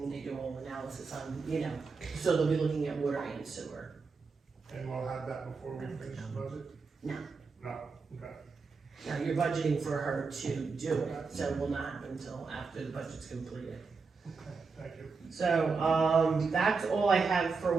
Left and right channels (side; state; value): left; quieter; 4.7 dB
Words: they do a whole analysis on, you know, so they'll be looking at water and sewer. And we'll have that before we finish the budget? No. No, okay. Now, you're budgeting for her to do it, so it will not happen until after the budget's completed. Okay, thank you. So, that's all I have for